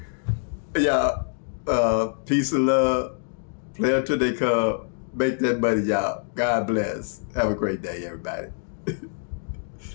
y'all, peace and love. Play until they come. Make that money, y'all. God bless. Have a great day, everybody.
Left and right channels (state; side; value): silent; right; 62 dB below the other